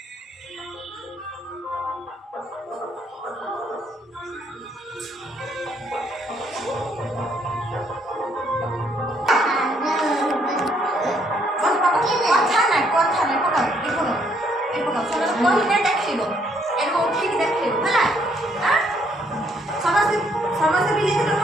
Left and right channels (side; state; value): both; normal; correlation 0.69